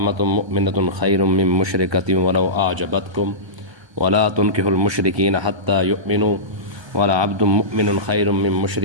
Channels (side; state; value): left; late; 1.3 ms